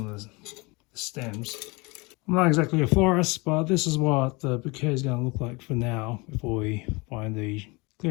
the stems. I'm not exactly a florist, but this is what the bouquet is going to look like for now before we find the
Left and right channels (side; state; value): right; quieter; 26.3 dB